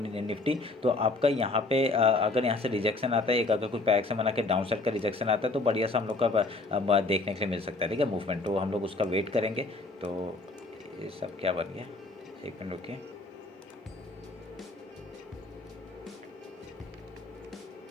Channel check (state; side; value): quieter; right; 3.3 dB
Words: निफ्टी। तो आपका यहाँ पे अगर यहाँ से रिजेक्शन आता है, एक अगर कुछ पैक्स बना के डाउन साइड का रिजेक्शन आता है, तो बढ़िया सा हम लोग का देखने के लिए मिल सकता है, ठीक है, मूवमेंट। तो हम लोग उसका वेट करेंगे। तो ये सब क्या बन गया, 1 मिनट रुकिए।